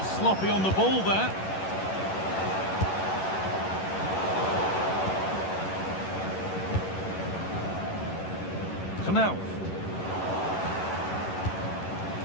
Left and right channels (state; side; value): late; right; 11 ms